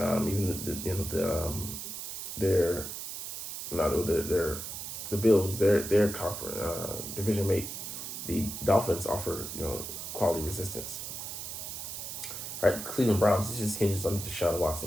their the Bills, their conference division mate, the Dolphins offer quality resistance. All right, the Cleveland Browns. This just hinges on Deshaun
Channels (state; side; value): noise; right; hiss, 7 dB below the sound